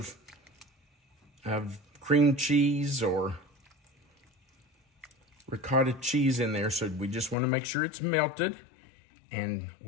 cream cheese or ricotta cheese in there, so we just want to make sure it's melted. And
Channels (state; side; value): drops out; right; at 7.4 s